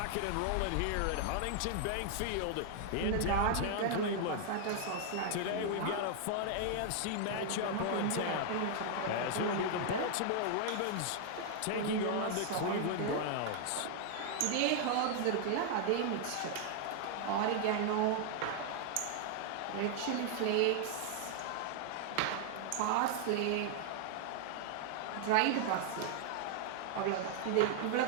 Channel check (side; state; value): both; different; correlation 0.00